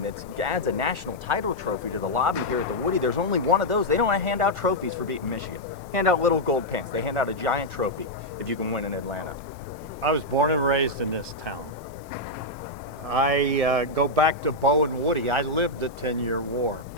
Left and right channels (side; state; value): left; noise; hiss, 27 dB below the sound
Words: that adds a national title trophy to the lobby here at the Woody. There's only one of those. They don't hand out trophies for beating Michigan. Hand out little gold pants. They hand out a giant trophy if you can win in Atlanta. I was born and raised in this town. I go back to Bo and Woody. I lived the 10-year war.